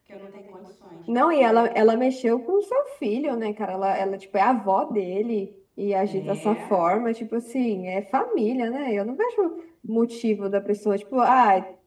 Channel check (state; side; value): identical; both; correlation 1.00